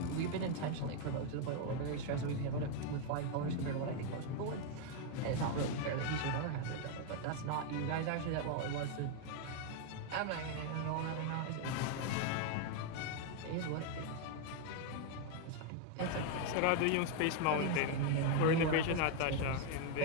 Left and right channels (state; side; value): different; both; correlation 0.01